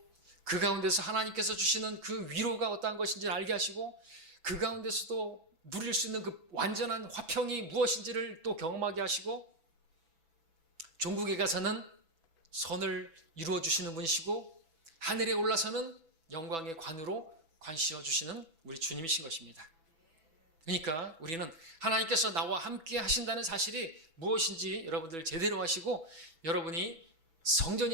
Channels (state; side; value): late; left; 6.1 ms